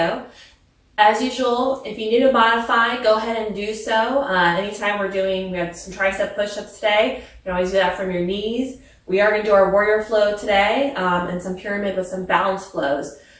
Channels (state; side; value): identical; both; correlation 1.00